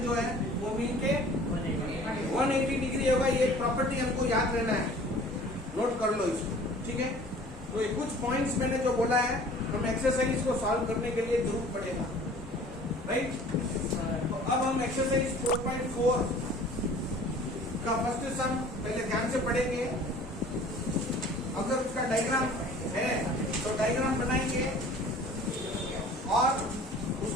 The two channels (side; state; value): both; normal; correlation 0.48